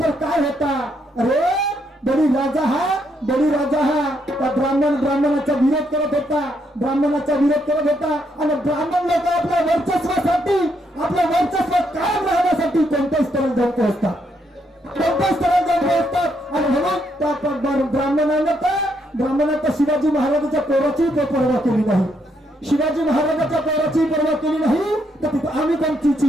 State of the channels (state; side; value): normal; both; correlation 0.75